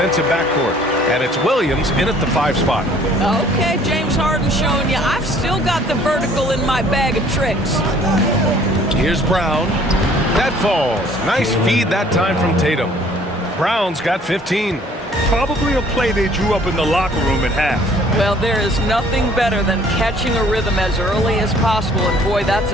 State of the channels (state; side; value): normal; both; correlation 0.56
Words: backcourt. And it's Williams in at the 5 spot. Okay, James Harden showing you I've still got the vertical in my bag of tricks. Here's Brown. That falls. Nice feed that time from Tatum. Brown's got 15. Probably a play they drew up in the locker room at half. Well, there is nothing better than catching a rhythm as early as possible, and boy, that's